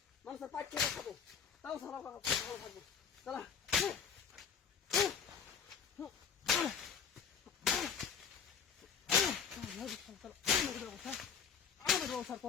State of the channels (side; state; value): right; quieter; 7.1 dB